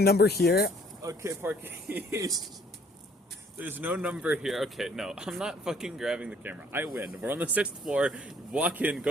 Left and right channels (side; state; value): both; normal; correlation 0.60